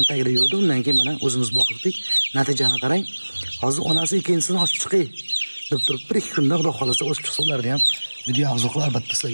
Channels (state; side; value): inverted; both; correlation -1.00